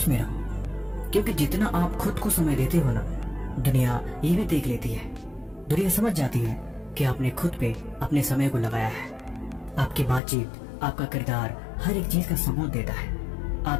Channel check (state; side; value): drops out; right; at 10.2 s